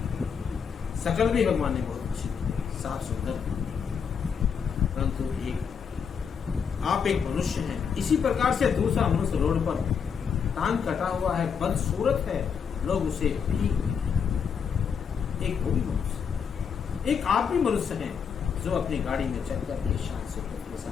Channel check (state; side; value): quieter; right; 6.7 dB